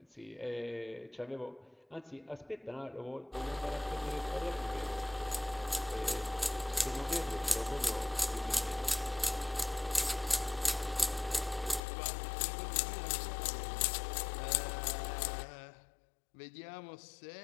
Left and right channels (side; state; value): right; drops out; at 11.8 s